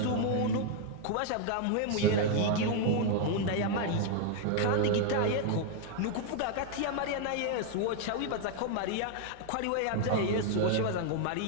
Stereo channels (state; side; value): different; both; correlation 0.00